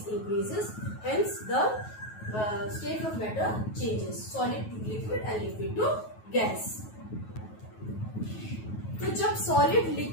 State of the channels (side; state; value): right; late; 9.3 ms